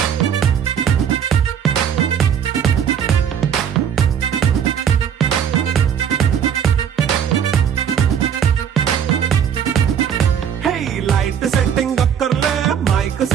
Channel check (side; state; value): left; quieter; 8.4 dB